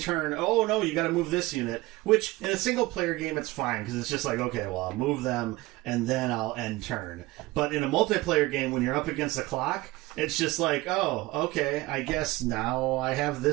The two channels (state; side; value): quieter; left; 20.4 dB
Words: oh no, you gotta move this unit. Which, in a single player game, it's fine, because it's just like, okay, well, I'll move them, and then I'll end turn. But in a multiplayer game, when you're up against the clock, it's just like, oh, okay, I guess now I have